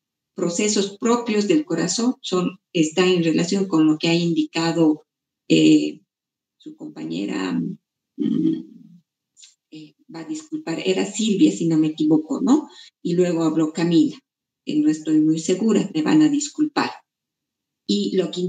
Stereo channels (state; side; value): identical; both; correlation 1.00